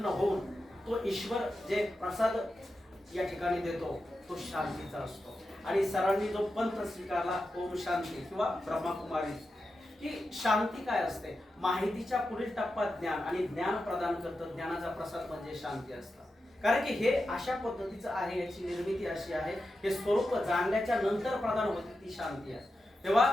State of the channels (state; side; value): normal; both; correlation 0.90